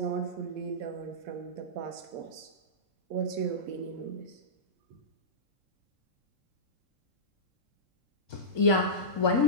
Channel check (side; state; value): left; late; 3.7 ms